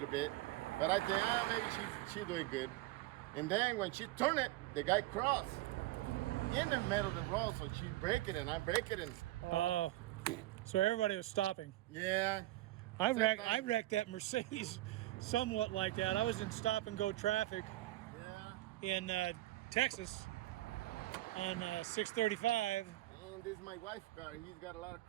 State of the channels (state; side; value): quieter; left; 17.3 dB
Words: bit. But I think maybe she's doing good. And then when she turned it, the guy crossed in the middle of the road, so she break it and I break it and Oh, so everybody was stopping. yeah. I wrecked that Mercedes somewhat like that. I was in stop and go traffic in Texas on 635. And this is my wife's car. He's got a lot of